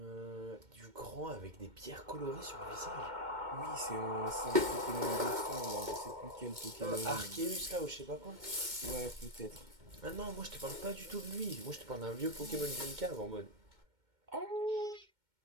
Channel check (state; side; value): late; left; 2.1 ms